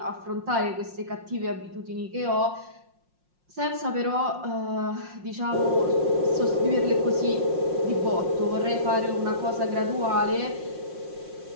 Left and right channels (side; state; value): left; late; 5.6 ms